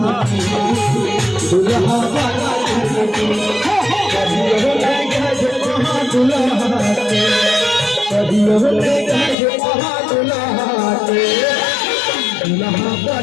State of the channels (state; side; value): drops out; right; at 9.3 s